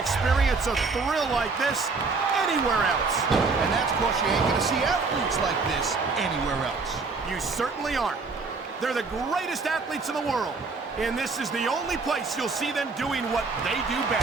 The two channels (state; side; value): quieter; left; 4.3 dB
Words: a thrill like this anywhere else. And that's because you ain't gonna see athletes like this anywhere else. You certainly aren't. They're the greatest athletes in the world. And this is the only place you'll see them doing what they do